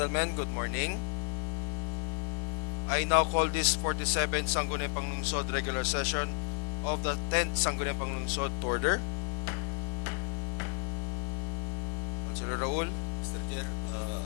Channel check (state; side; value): silent; right; digital silence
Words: good morning. I now call this 47th Sangguniang Panglungsod regular session of the 10th Sangguniang Panglungsod to order. Councilor Raul. Mr. Chair,